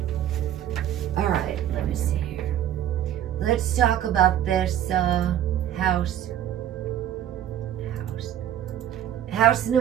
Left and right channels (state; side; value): quieter; left; 11.1 dB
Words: All right, let me see here. Let's talk about this house. House